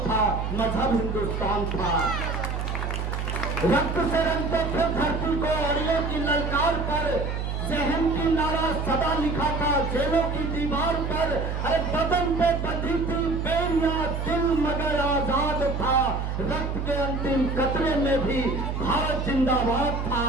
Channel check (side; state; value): right; noise; hum, 3 dB below the sound